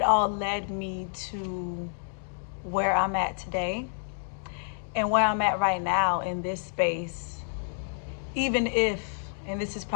all led me to where I'm at today and where I'm at right now in this space. Even if, and this is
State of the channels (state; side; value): silent; right; digital silence